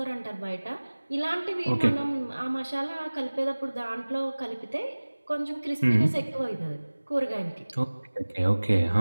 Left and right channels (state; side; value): inverted; both; correlation -1.00